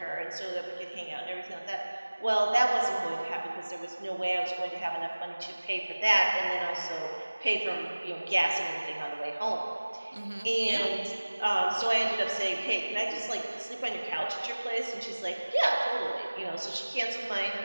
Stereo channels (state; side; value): inverted; both; correlation -1.00